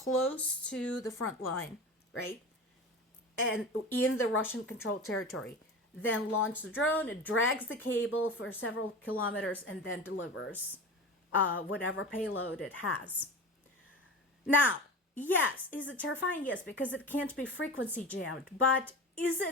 to the front line, right? And in the Russian controlled territory. Then launch the drone, it drags the cable for several kilometers and then delivers whatever payload it has. Now, yes, is it terrifying? Yes, because it can't be frequency jammed. But is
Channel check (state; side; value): normal; both; correlation 0.31